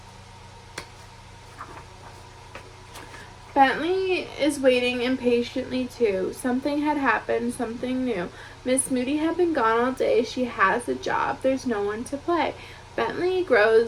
Bentley is waiting impatiently too. Something had happened, something new. Miss Moody had been gone all day. She has a job. There's no one to play. Bentley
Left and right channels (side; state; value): both; identical; correlation 1.00